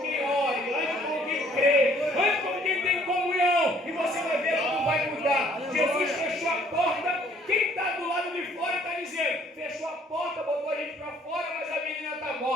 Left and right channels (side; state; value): both; normal; correlation 0.60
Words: quem ore. Ande com quem crê. Ande com quem tem comunhão. E você vai ver como vai mudar. Jesus fechou a porta. Quem está do lado de fora está dizendo: fechou a porta, botou a gente para fora, mas a menina está